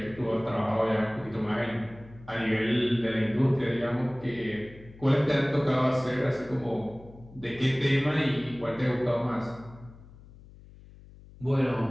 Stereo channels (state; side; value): noise; left; hum, 21 dB below the sound